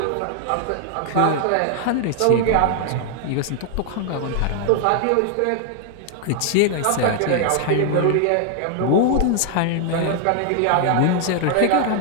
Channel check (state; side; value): different; both; correlation 0.00